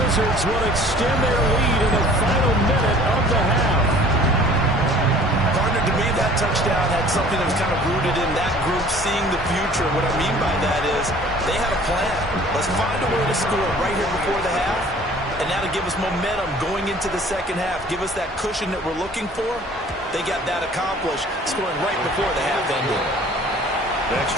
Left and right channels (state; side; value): normal; both; correlation 0.50